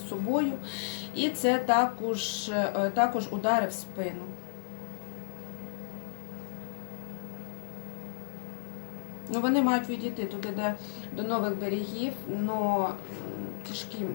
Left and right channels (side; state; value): right; silent; 56 dB below the other